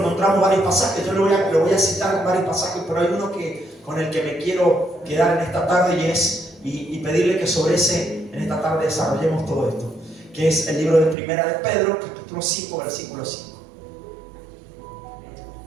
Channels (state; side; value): drops out; left; at 11.2 s